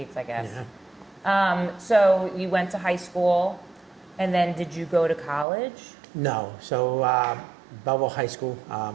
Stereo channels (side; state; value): left; drops out; at 5.5 s